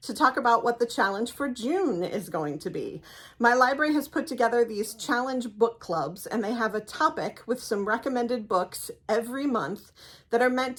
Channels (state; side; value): identical; both; correlation 1.00